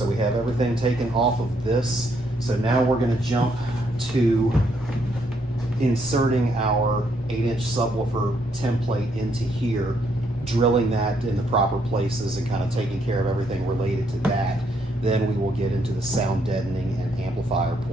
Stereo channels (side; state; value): both; normal; correlation 0.73